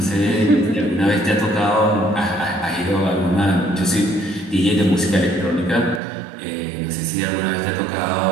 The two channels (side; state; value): left; drops out; at 6.0 s